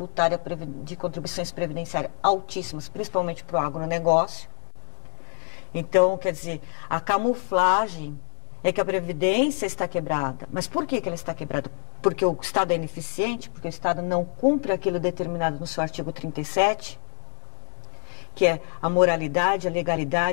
de contribuições previdenciárias altíssimas, principalmente para o agronegócio. Então, quer dizer, a camuflagem é que a Previdência está quebrada. Mas por que ela está quebrada? Porque o Estado é ineficiente, porque o Estado não cumpre aquilo determinado no seu artigo 37, que é a moralidade, a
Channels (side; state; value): right; silent; 61 dB below the other